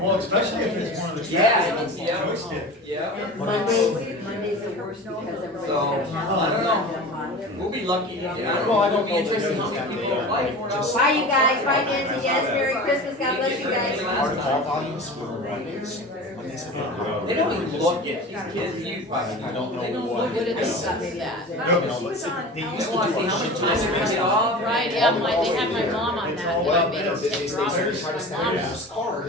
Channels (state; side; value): normal; both; correlation 0.34